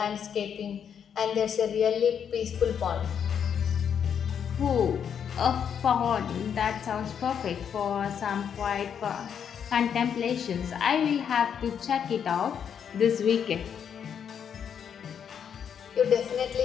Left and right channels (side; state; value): right; quieter; 8.0 dB